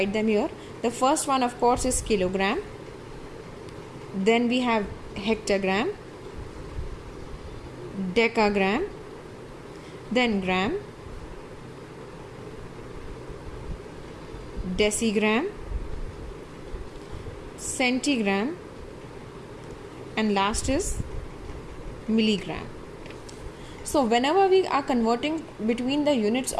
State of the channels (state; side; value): identical; both; correlation 1.00